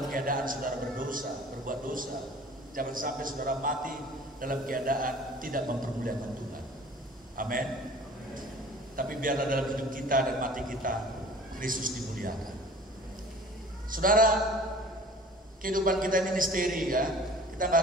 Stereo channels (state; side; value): normal; both; correlation 0.46